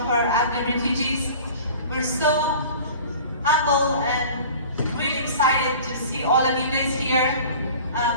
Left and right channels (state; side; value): inverted; both; correlation -0.42